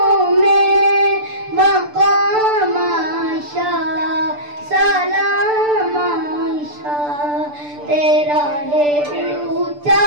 में मकाम आयशा सलाम आयशा। तेरा है ऊंचा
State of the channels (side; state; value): left; late; 6.8 ms